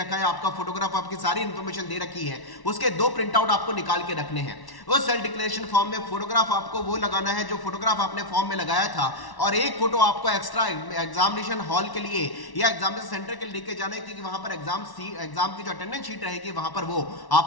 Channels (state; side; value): late; right; 1.1 ms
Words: है, आपका फोटोग्राफ, आपकी सारी इंफॉर्मेशन दे रखी है, उसके 2 प्रिंट आउट आपको निकाल के रखने हैं। उस सेल्फ डिक्लेरेशन फॉर्म में फोटोग्राफ आपको वो लगाना है जो फोटोग्राफ आपने फॉर्म में लगाया था, और एक फोटो आपको एक्स्ट्रा एग्जामिनेशन हॉल के लिए या एग्जामिनेशन सेंटर के लिए लेके जाने की, वहां पर एग्जाम की जो अटेंडेंस शीट रहेगी वहां पर वो